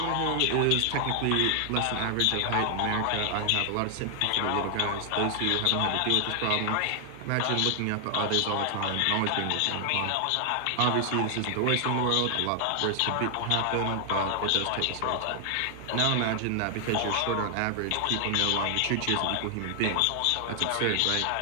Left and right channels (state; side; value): different; both; correlation 0.00